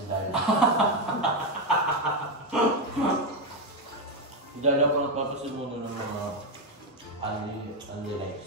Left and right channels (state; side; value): normal; both; correlation 0.06